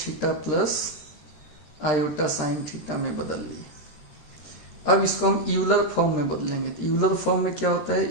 plus iota sine theta में बदल लिए। अब इसको हम यूलर फॉर्म में बदलेंगे। तो यूलर फॉर्म में क्या होता है,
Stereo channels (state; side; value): late; right; 13 ms